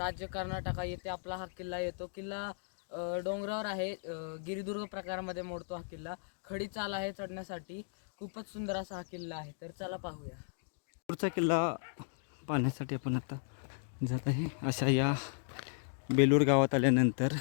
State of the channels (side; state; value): right; silent; digital silence